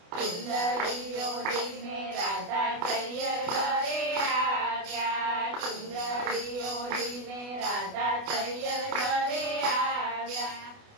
ચુંદડીઓ લઈને રાધા તૈયર ઘરે આવ્યા, ચુંદડીઓ લઈને રાધા તૈયર ઘરે આવ્યા,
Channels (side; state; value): left; late; 28 ms